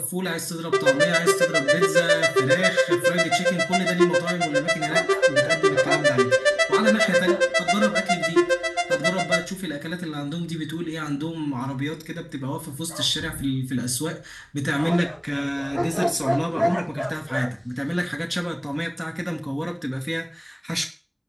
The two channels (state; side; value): identical; both; correlation 1.00